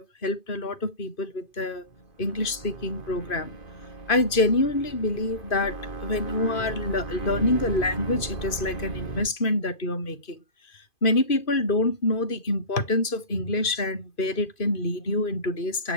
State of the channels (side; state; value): right; late; 2.5 ms